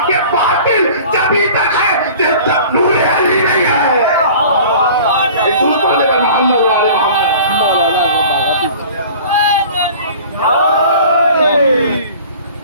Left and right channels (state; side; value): inverted; both; correlation -0.44